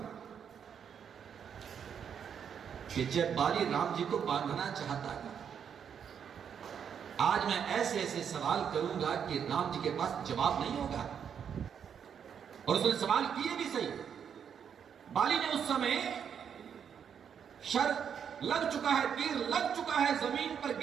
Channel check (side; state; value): left; quieter; 7.8 dB